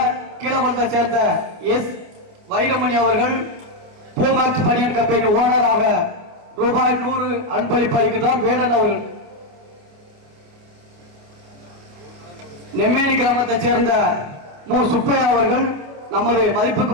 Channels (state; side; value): late; left; 28 ms